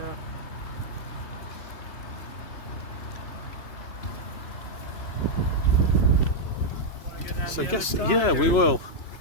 So I guess, yeah, we will.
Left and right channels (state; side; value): late; right; 3.0 ms